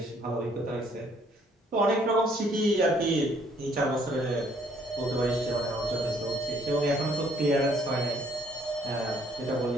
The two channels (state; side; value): normal; both; correlation 0.64